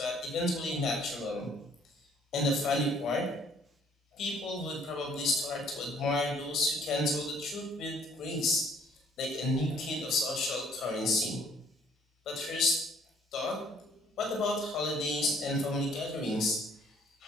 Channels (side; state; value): both; normal; correlation 0.61